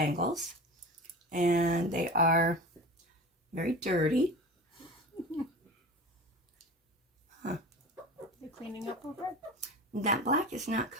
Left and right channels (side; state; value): both; normal; correlation 0.33